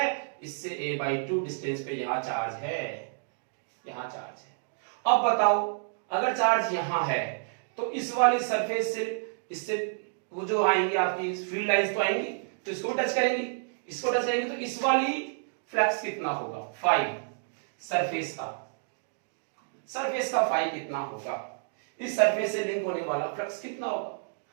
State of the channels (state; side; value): silent; left; digital silence